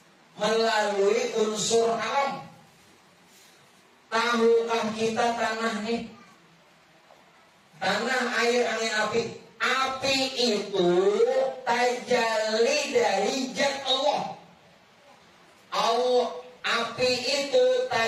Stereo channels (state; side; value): identical; both; correlation 1.00